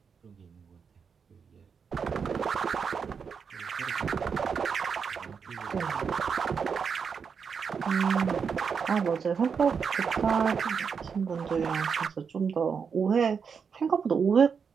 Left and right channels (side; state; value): left; quieter; 6.2 dB